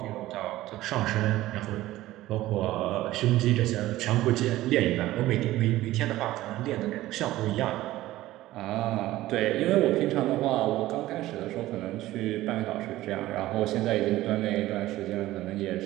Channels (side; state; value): left; quieter; 16.1 dB